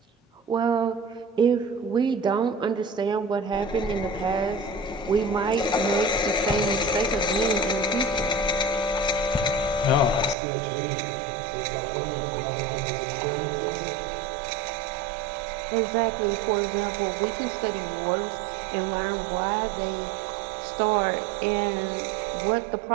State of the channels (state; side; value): drops out; left; at 10.4 s